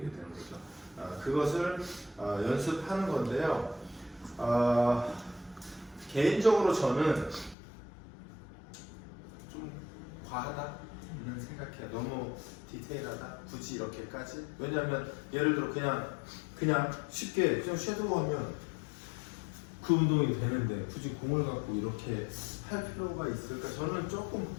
거죠. 그것을 연습하는 건데요. 개인적으로 저는 좀 과하다는 생각해요. 너무 디테일하다? 굳이 이렇게까지? 왜냐하면 예를 들어 그냥 쉽게 그냥 섀도우하면 그 운동이 되는데 굳이 공을 갖고 이렇게 할 필요가 있을까? 저는 조금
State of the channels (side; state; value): right; drops out; at 7.6 s